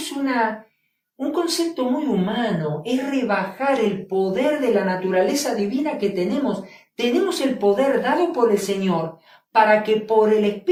un concepto muy humano, es rebajar el poder de la naturaleza divina que tenemos. Tenemos el poder dado por el Señor para que por el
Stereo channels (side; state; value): both; identical; correlation 1.00